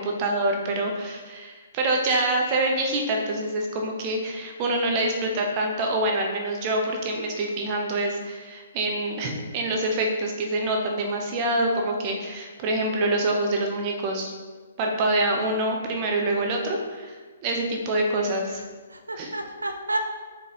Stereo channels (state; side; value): inverted; both; correlation -0.48